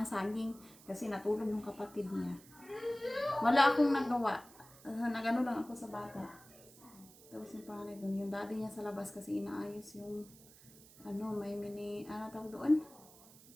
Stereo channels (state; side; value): noise; right; hiss, 22 dB below the sound